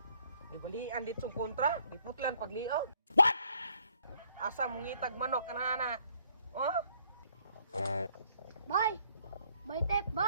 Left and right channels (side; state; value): both; inverted; correlation -0.66